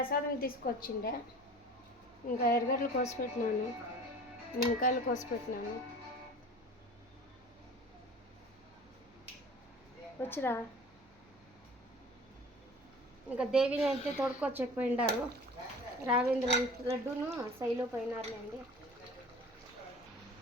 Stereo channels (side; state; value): right; noise; hum, 27 dB below the sound